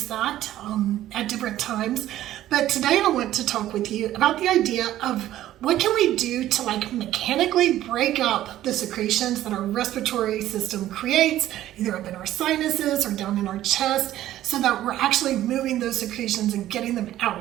that at different times. But today I want to talk with you about the idea of what can we do to like mechanically break up the secretions that our respiratory system creates, either up in our sinuses or down in our chest, so that we're actually moving those secretions and getting them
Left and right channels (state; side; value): quieter; left; 13.5 dB